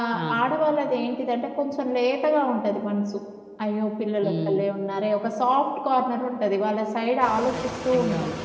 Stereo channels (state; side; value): identical; both; correlation 1.00